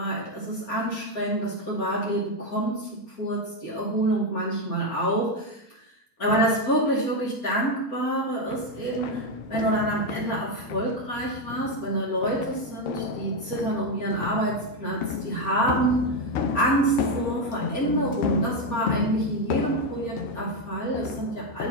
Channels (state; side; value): late; right; 4.3 ms